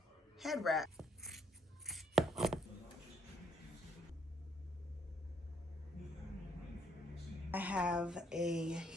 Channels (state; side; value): normal; both; correlation 0.69